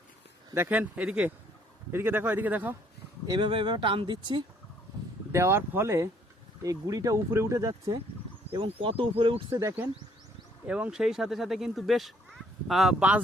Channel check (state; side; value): normal; both; correlation 0.64